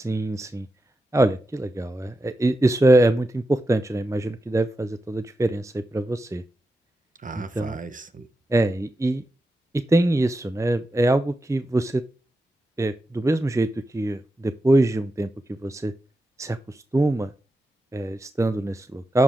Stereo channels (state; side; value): normal; both; correlation 0.89